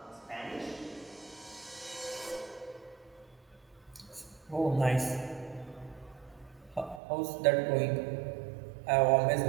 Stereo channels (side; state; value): left; drops out; at 7.0 s